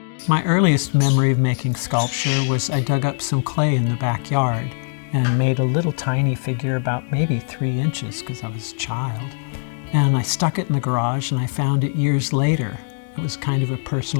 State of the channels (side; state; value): right; silent; digital silence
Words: My earliest memory of making sculpture was I dug up some clay in the backyard and made a little tiny figure about maybe 3 inches because I was a child. And I stuck it in the garage and I found it years later. It was kind of a